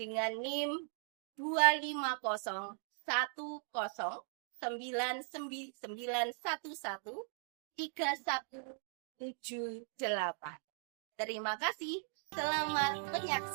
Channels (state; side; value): silent; left; 52 dB below the other